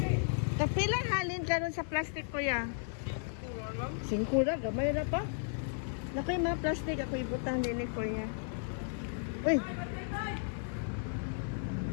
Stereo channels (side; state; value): right; silent; 55 dB below the other